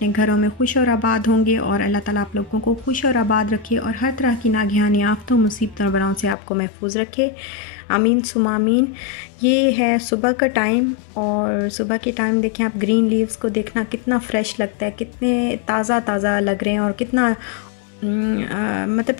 घरों में खुश और आबाद होंगे और अल्लाह ताला आप लोगों को खुश और आबाद रखे और हर तरह की नागहानी आफतों मुसीबतों और बलाओं से आपको महफूज रखे। आमीन सुमा आमीन। ये है सुबह का टाइम और सुबह के टाइम देखें आप, ग्रीन लीव्स को देखना कितना फ़्रेश लगता है, कितने ताज़ा ताज़ा लग रहे हैं और कितना मतलब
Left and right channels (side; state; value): right; drops out; at 6.4 s